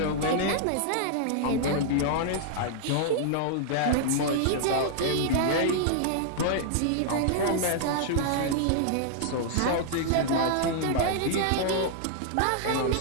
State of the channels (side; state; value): both; different; correlation -0.01